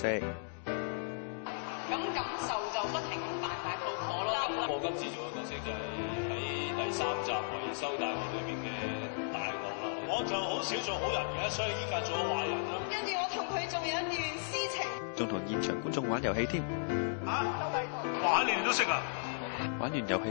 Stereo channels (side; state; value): right; silent; digital silence